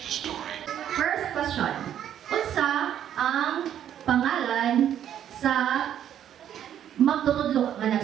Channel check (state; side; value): quieter; left; 10.2 dB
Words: the story. First question. Unsa ang pangalan sa magtutudlo nga